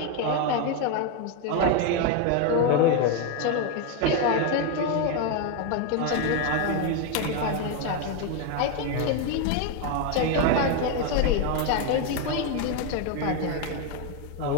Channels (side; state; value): both; different; correlation 0.02